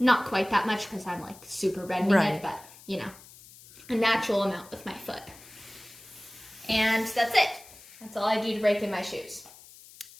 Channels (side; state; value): left; noise; hiss, 21 dB below the sound